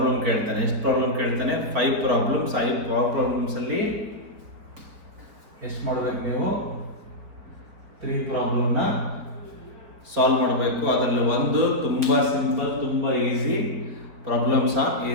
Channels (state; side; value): late; left; 4.7 ms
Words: ಕೇಳ್ತಾನೆ. ಎಷ್ಟು ಪ್ರಾಬ್ಲಮ್ ಕೇಳ್ತಾನೆ? 5 ಪ್ರಾಬ್ಲಮ್ಸ್. 5 ಪ್ರಾಬ್ಲಮ್ಸಲ್ಲಿ ಎಷ್ಟು ಮಾಡಬೇಕು ನೀವು? 3 ಪ್ರಾಬ್ಲಮ್ನ ಸಾಲ್ವ್ ಮಾಡಬೇಕು. ಅದರಲ್ಲಿ ಒಂದು ತುಂಬ ಸಿಂಪಲ್, ತುಂಬ easy problems on